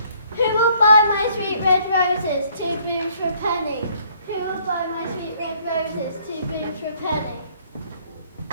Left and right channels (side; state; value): both; inverted; correlation -0.63